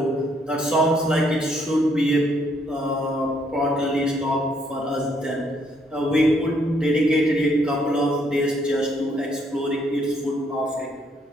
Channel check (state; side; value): normal; both; correlation 0.70